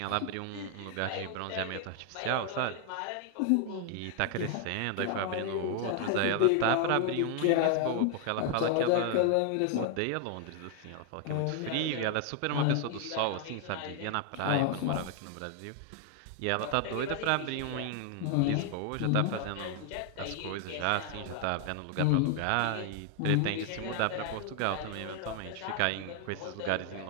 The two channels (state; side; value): different; both; correlation 0.00